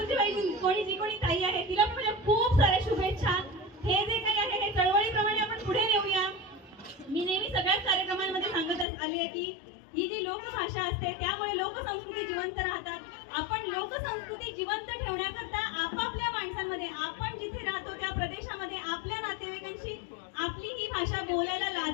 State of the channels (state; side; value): drops out; right; at 8.8 s